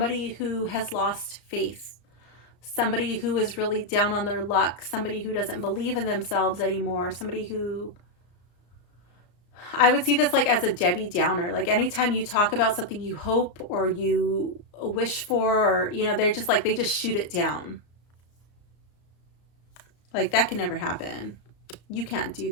who has lost faith, somebody who is really down on their luck, somebody who doesn't believe in themselves anymore, somebody who, I would see this like as a Debbie Downer. Like anytime you talk about something you hope or you wish for, or, you know, they're just like, they just shoot it down. Like that can never happen. You can't do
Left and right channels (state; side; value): late; right; 34 ms